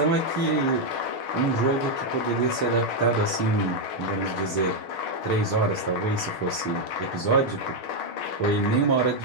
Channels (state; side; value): late; right; 6.5 ms